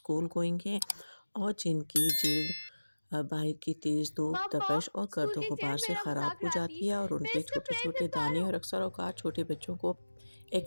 گوئنگ ہیں اور جن کی جلد باہر کی تیز دھوپ، پاپا تپش اور اسکول گرد و کی غبار سیر سے میرا خراب مذاق ہو اڑاتی، جاتی ہے اور ان میں کے اس کا چھوٹے پلیٹ چھوٹے نہیں پا دانے رہا اور ہوں۔ اکثر اوقات چھوٹے بچوں کو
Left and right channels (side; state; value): both; inverted; correlation -1.00